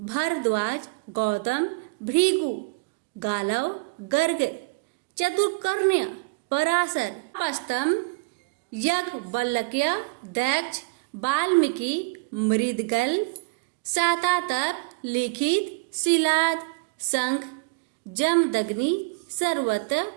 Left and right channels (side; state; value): left; quieter; 29.0 dB